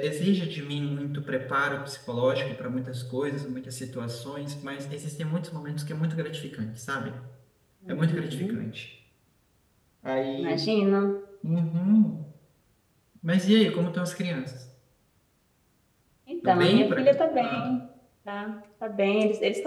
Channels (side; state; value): both; identical; correlation 1.00